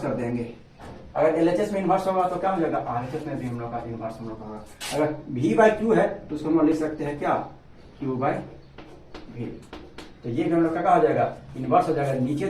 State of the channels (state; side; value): identical; both; correlation 1.00